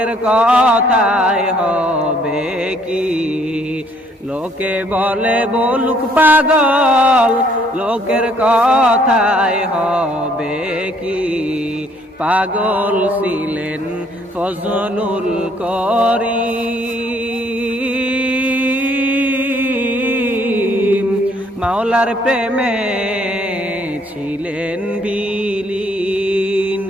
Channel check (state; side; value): normal; both; correlation 0.64